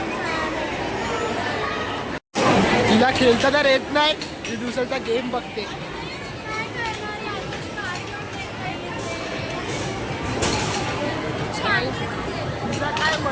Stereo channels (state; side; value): identical; both; correlation 1.00